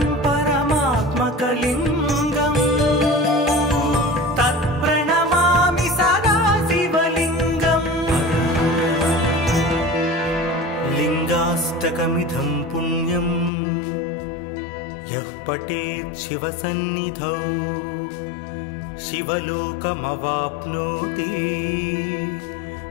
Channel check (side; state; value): right; drops out; at 13.5 s